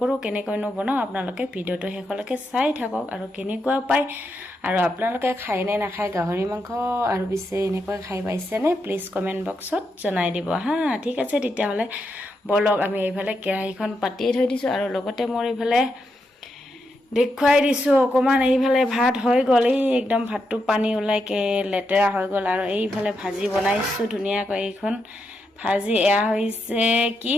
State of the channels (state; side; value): normal; both; correlation 0.83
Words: কেনেকৈনো বনাওঁ আপোনালোকে ভিডিঅ'টো শেষলৈকে চাই থাকক আৰু কেনেকুৱা পায়, আৰু আপোনালোকে খায়নে নাখায় গাহৰি মাংস, আৰু পিছে এনেকৈ খাই পাইছেনে প্লিজ কমেণ্ট বক্সত জনাই দিব হা। ঠিক আছে, তেতিয়াহ'লে বলক আমি এইফালে কেৰাহীখন পাতিয়ে থৈ দিছোঁ। আৰু লগতে মোৰ এইফালে দেখুৱাই দিছোঁ অকণমান। এইফালে ভাত হৈ গ'ল, এই একদম ভাতটো পানী ওলাইকে লেতেৰা হৈ গ'ল। আৰু এইফালে ভাজি বনাইছোঁ ধুনীয়াকৈ। এইখন ভাজি এয়া হৈছে কি,